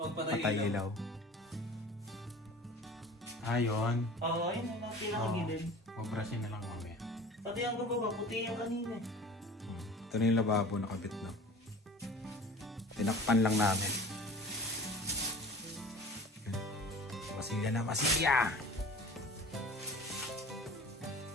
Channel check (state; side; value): normal; both; correlation 0.40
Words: ilaw. Ayun. Oo, yun ang pinakagilid. Mabrasin na lang mamaya. Pati ang gababa, puti yung kanina. Ito na yung lababo nakabit na. Tinakpan lang namin. Masilya na, masilya!